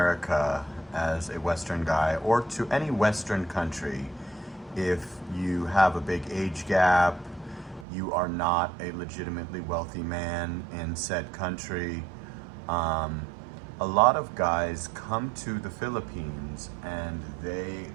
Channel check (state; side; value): drops out; left; at 7.9 s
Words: as a Western guy or to any Western country if you have a big age gap, you are not a legitimately wealthy man in said country. Um, a lot of guys come to the Philippines and they